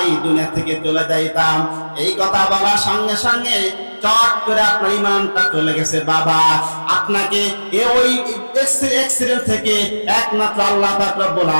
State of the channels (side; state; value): both; inverted; correlation -1.00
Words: দুনিয়া থেকে চলে যাইতাম। এই কথা বলার সঙ্গে সঙ্গে চট করে আপনার ঈমানটা চলে গেছে। বাবা, আপনাকে ওই অ্যাক্সিডেন্ট থেকে একমাত্র আল্লাহ পাক রব্বুল